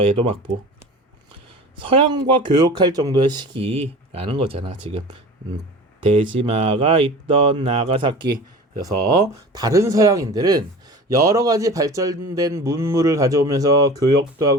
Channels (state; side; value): normal; both; correlation 0.37